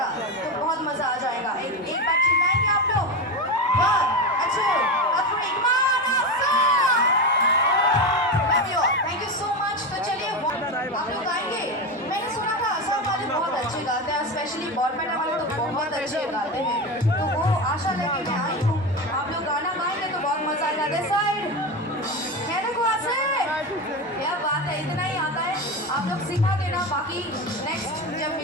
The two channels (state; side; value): normal; both; correlation 0.19